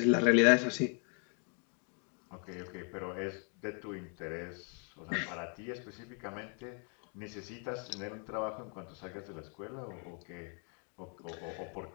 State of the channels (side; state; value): right; quieter; 39.8 dB